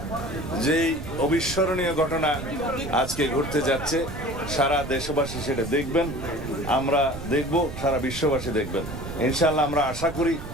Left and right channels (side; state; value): right; noise; rumble, 10 dB below the sound